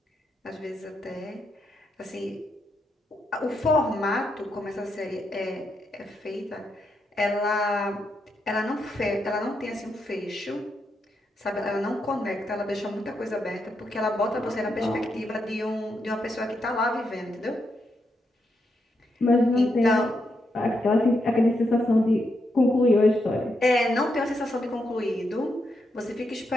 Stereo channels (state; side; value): normal; both; correlation 0.82